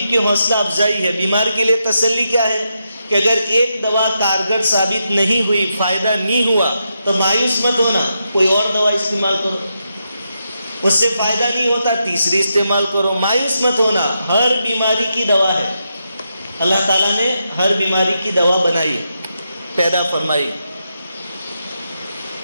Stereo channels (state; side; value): inverted; both; correlation -0.84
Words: کی حوصلہ افزائی ہے، بیمار کے لیے تسلی کیا ہے کہ اگر ایک دوا کارگر ثابت نہیں ہوئی، فائدہ نہیں ہوا تو مایوس مت ہونا، کوئی اور دوا استعمال کرو، اس سے فائدہ نہیں ہوتا تیسری استعمال کرو، مایوس مت ہونا۔ ہر بیماری کی دوا ہے، اللہ تعالیٰ نے ہر بیماری کی دوا بنائی، پیدا فرمائی۔